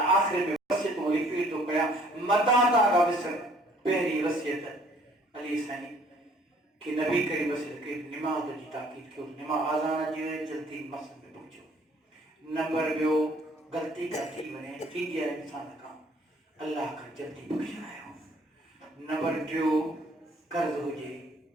आख़िर में वसियतूं रिपीट थो कयां मता था विसर पहिरीं वसियत अली साईं कि नबी करीम वसियत कई निमाज़ जी ताक़ीद कयो निमाज़ आज़ान अची वञे जल्दी मस्जिद में पहुचो नंबर ॿियो गलती का थी वने थी है इंसान का अल्लाह का जल्दी बख्शायो नंबर 2 कर्ज हुजे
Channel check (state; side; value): normal; both; correlation 0.59